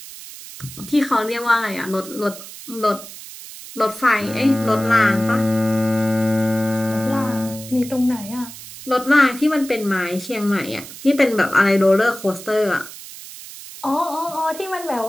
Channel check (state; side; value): noise; right; hiss, 14 dB below the sound